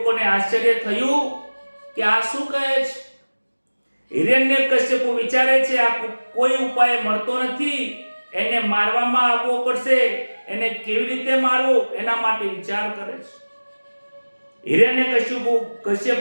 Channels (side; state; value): both; inverted; correlation -1.00